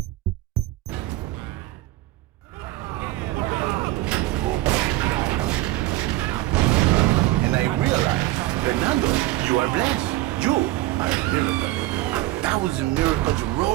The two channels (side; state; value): left; quieter; 17.0 dB